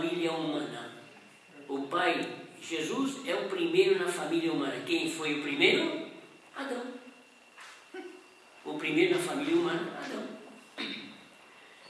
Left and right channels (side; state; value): both; identical; correlation 1.00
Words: humana. O pai, Jesus, é o primeiro na família humana. Quem foi o primeiro? Adão. O primeiro na família humana, Adão.